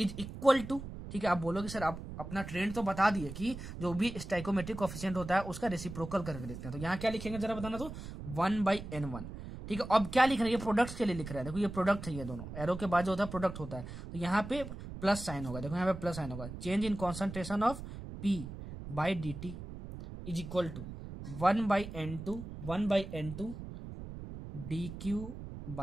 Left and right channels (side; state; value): right; noise; rumble, 10 dB below the sound